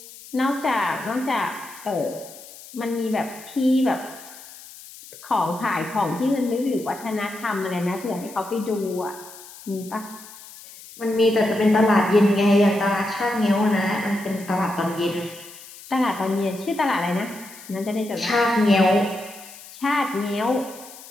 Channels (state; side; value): noise; left; hiss, 18 dB below the sound